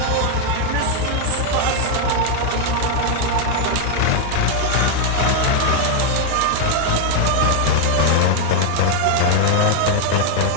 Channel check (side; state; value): both; different; correlation 0.00